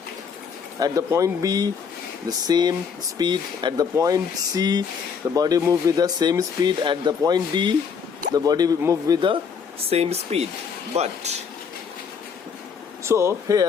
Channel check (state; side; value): quieter; right; 6.3 dB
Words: At the point B, the same speed. At the point C, the body move with the same speed. At the point D, the body move with the same speed. But so